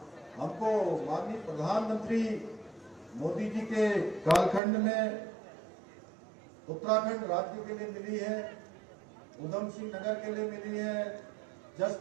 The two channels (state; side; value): drops out; left; at 4.6 s